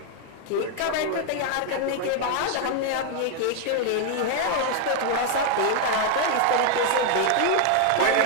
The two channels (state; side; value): different; both; correlation 0.00